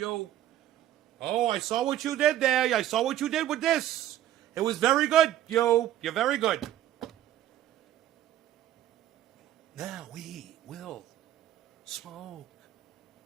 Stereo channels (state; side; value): quieter; left; 12.6 dB